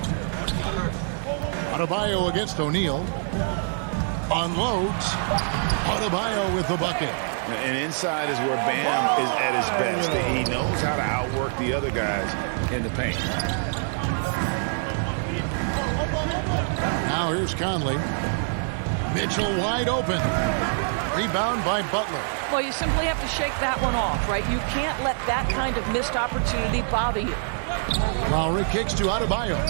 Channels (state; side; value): silent; left; 62 dB below the other